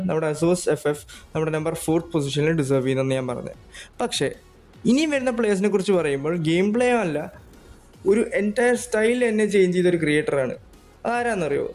നമ്മുടെ ASOS FF നമ്മുടെ നമ്പർ 4th പൊസിഷനിൽ ഡിസേർവ് ചെയ്യുന്നതെന്ന് ഞാൻ പറഞ്ഞത്. പക്ഷേ ഇനിയും വരുന്ന പ്ലേയേഴ്സിനെ കുറിച്ച് പറയുമ്പോൾ ഗെയിം പ്ലേ അല്ല, ഒരു എൻറ്റയർ സ്റ്റൈൽ തന്നെ ചേഞ്ച് ചെയ്തൊരു ക്രിയേറ്ററാണ്. ആരാന്നറിയോ?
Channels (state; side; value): identical; both; correlation 1.00